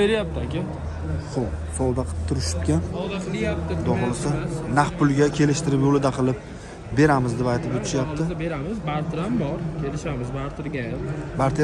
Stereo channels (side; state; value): both; identical; correlation 1.00